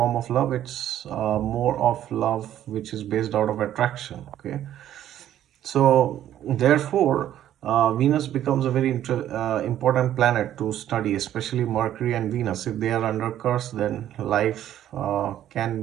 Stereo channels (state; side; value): quieter; left; 11.7 dB